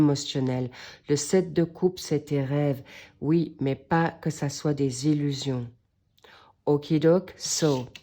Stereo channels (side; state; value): both; identical; correlation 1.00